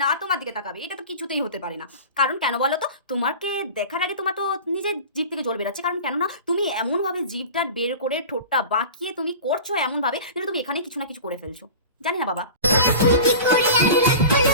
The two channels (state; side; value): inverted; both; correlation -0.35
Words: না, আর তোমার দিকে তাকাবে এটা তো কিছুতেই হতে পারে না। কারণ কেন বলো তো? তোমাকে দেখার আগে তোমার তো নিজের জিভ থেকে জল বেরাচ্ছে। কারণ কেননা তুমি এমনভাবে জিভটা বের করে ঠোঁটটা বাঁকিয়ে তুমি করছো এমনভাবে যেন তুমি এখানে কিছু না কিছু করে ফেলছো। জানি না বাবা।